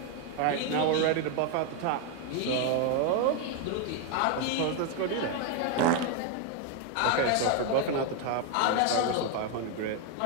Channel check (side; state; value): both; different; correlation 0.01